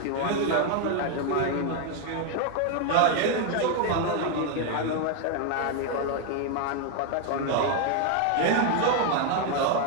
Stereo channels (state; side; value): different; both; correlation 0.01